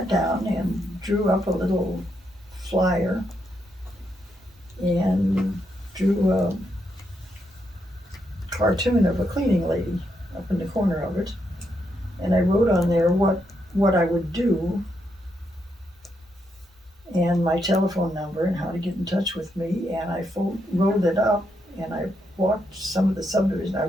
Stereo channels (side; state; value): both; normal; correlation 0.80